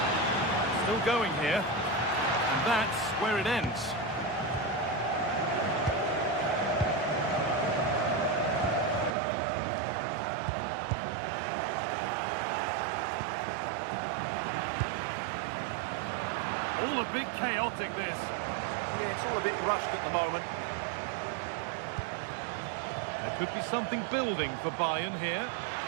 Still going here. And that's where it ends. All a bit chaotic, this. Yeah, it's all a bit rushed at the moment. There could be something building for Bayern here.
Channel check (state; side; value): drops out; left; at 9.1 s